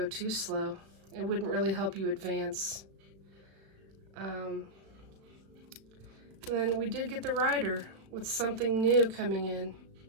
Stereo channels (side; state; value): left; late; 36 ms